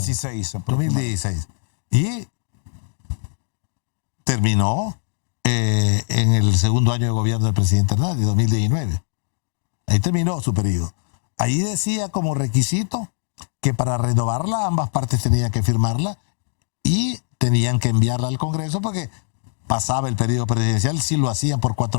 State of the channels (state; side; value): silent; right; digital silence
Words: 2016. Y terminó en el segundo año de gobierno del presidente Hernández, 2019. Ahí terminó su periodo. Ahí decía como requisito que para renovarla ambas partes tenían que firmarla y tenían que enviarla al Congreso porque pasaba el periodo presidencial. Si lo hacían por